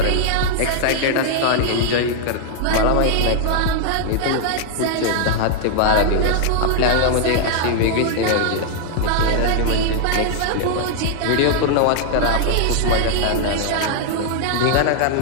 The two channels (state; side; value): different; both; correlation -0.01